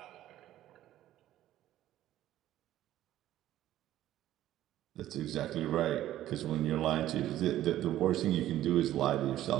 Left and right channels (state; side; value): quieter; left; 13.4 dB